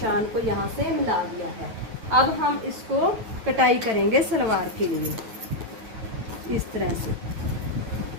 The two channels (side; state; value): left; late; 9.0 ms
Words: को यहाँ से मिला दिया है। अब हम इसको कटाई करेंगे सलवार के लिए इस तरह से।